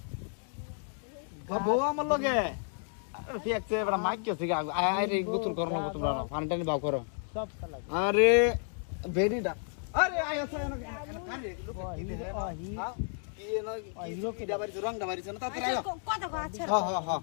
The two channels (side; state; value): right; silent; 55 dB below the other